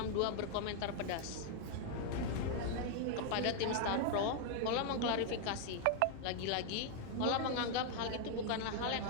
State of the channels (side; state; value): both; different; correlation 0.00